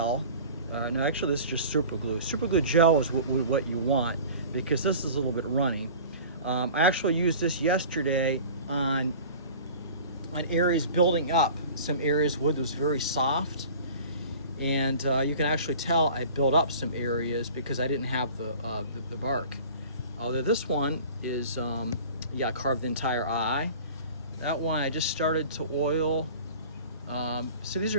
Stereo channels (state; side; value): inverted; both; correlation -0.42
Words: No, actually this is just super glue. Super glue gel is what you want because this is a little bit runny. I actually used this yesterday on areas building up. Some areas wood was very soft, and you can actually tell I built up some areas because I didn't have the bark. Although this one is, yeah, I carved the entire eye. That one I just started to oil. So these